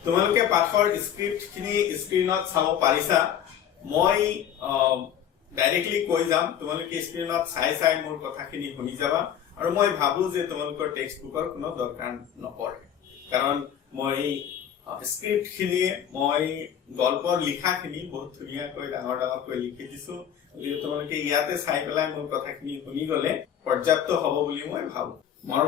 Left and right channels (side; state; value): right; quieter; 9.5 dB